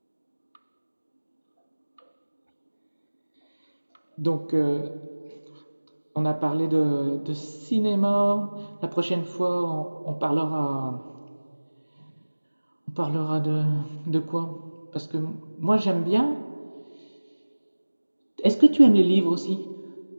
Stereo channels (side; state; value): both; inverted; correlation -1.00